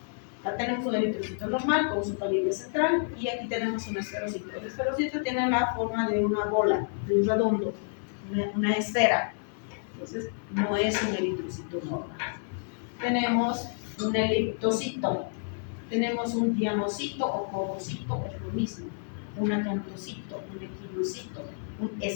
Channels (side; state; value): right; silent; 56 dB below the other